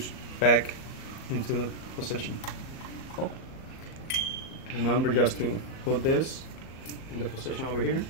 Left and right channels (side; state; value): right; late; 38 ms